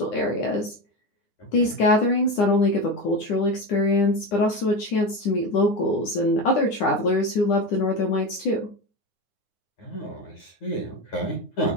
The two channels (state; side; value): late; right; 9.9 ms